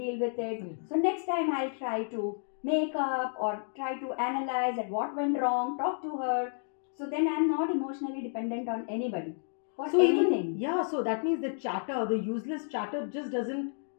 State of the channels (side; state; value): right; silent; digital silence